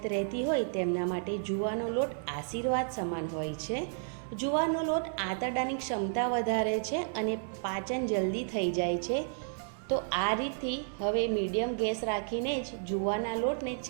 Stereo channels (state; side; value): silent; left; 56 dB below the other